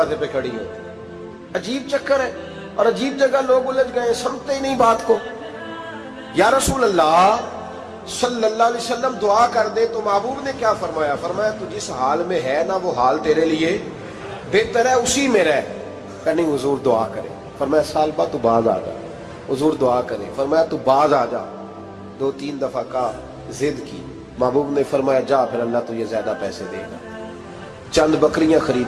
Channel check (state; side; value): identical; both; correlation 1.00